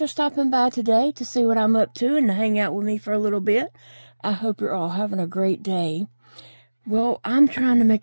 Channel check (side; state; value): both; inverted; correlation -1.00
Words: stopping by today to see what I'm up to and to hang out with me for a little bit. I hope you're all having a great day. Well, I'm trying to